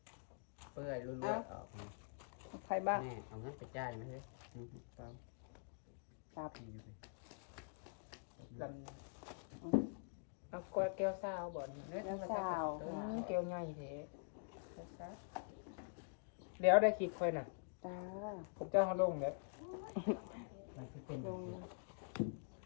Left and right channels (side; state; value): right; silent; digital silence